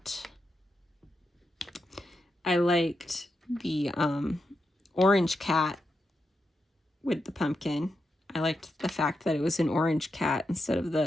I liked the orange cat with the pumpkin. I liked the fact that it was an orange cat instead of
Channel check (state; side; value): normal; both; correlation 0.86